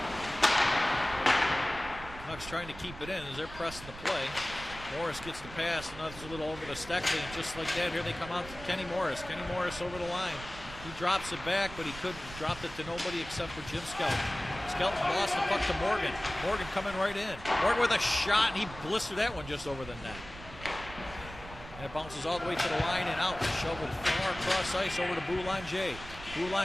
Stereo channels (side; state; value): right; noise; rumble, 14 dB below the sound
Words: Canucks trying to keep it in as they're pressing the play. Morris gets the pass, and that's a little over to Steckley, and just like that, here they come out to Kenny Morris. Kenny Morris over the line. He drops it back, but he couldn't. Dropped it to nobody except for Jim Skelton. Skelton lost the puck to Morgan. Morgan coming right in. Morgan with a shot, and he blistered that one just over the net. And it bounces all the way to the line and out. Shoveled far across ice over to Boulanger.